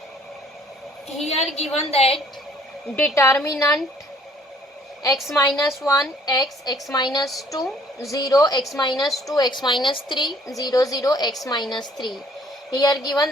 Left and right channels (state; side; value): normal; both; correlation 0.60